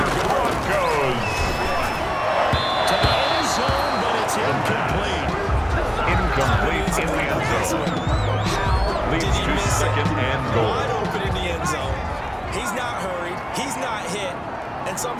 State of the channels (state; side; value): identical; both; correlation 1.00